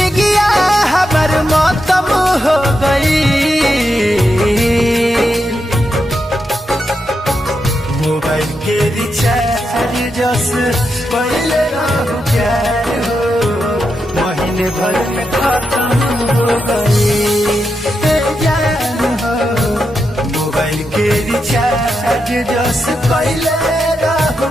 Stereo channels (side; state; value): both; normal; correlation 0.85